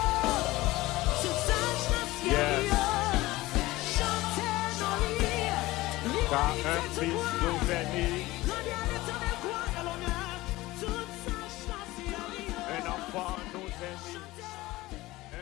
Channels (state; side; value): quieter; right; 18.8 dB